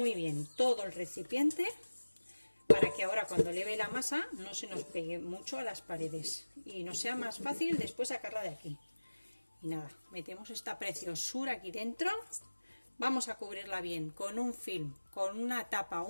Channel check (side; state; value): both; inverted; correlation -1.00